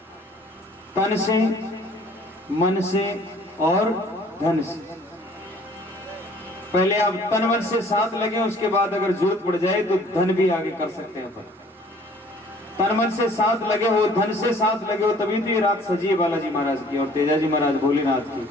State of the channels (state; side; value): normal; both; correlation 0.55